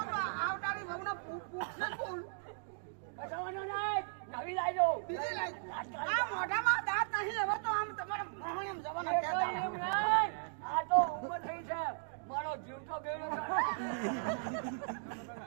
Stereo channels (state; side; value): silent; left; digital silence